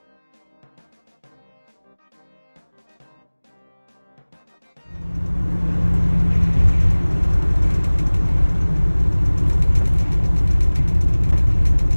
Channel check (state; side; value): inverted; both; correlation -1.00